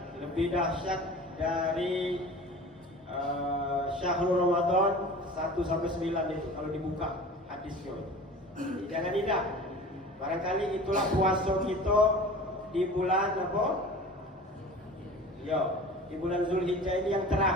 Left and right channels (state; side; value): normal; both; correlation 0.39